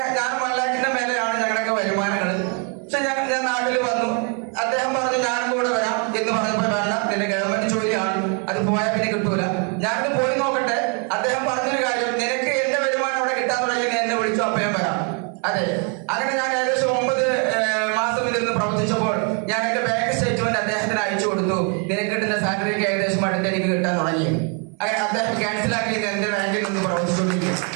ഞാൻ 1 ലക്ഷത്തിന്റെ മേലെയാണ് ഞങ്ങളുടെയൊക്കെ വരുമാനങ്ങൾ. പക്ഷെ ഞാൻ നാട്ടിൽ വന്നു. അദ്ദേഹം പറഞ്ഞു ഞാനും കൂടെ വരാം എന്ന് പറഞ്ഞപ്പോൾ, വേണ്ട, നിന്റെ ഗവൺമെന്റ് ജോലിയാണ്, അത് പോയാൽ പിന്നെ കിട്ടൂല, ഞാനിത് പോയി നോക്കട്ടെ. അദ്ദേഹം പറഞ്ഞൊരു കാര്യം, നിനക്ക് എന്റെ വരുമാനം അവിടെ കിട്ടാൻ തുടങ്ങി, നീ എന്നെ വിളിച്ചു, അപ്പം ഞാൻ വരാം. അതെ, അങ്ങനെ ഞാൻ ഏകദേശം 9 മാസം ഇതിൽ പ്രവർത്തിച്ചപ്പോൾ ഞാൻ എന്റെ ബാങ്ക് സ്റ്റേറ്റ്മെന്റ് അദ്ദേഹത്തിന് അയച്ചു കൊടുത്തു. നിനക്ക് കിട്ടുന്ന സാലറിക്ക് ഏകദേശം അടുത്ത് എനിക്ക് കിട്ടാൻ തുടങ്ങി. അങ്ങനെ അദ്ദേഹം ക്യാൻസലാക്കി എന്റെ ബാങ്കിൽ നിന്ന് പ്രവർത്തിച്ചുകൊണ്ടിരിക്കും.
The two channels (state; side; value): quieter; left; 37.7 dB